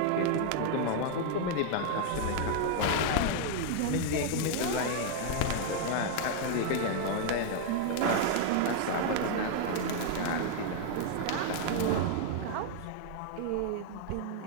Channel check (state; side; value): different; both; correlation 0.00